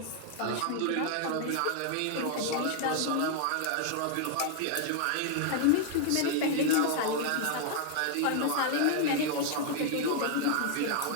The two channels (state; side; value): different; both; correlation 0.00